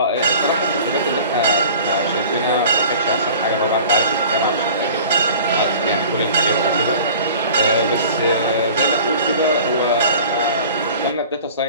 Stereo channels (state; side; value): inverted; both; correlation -0.44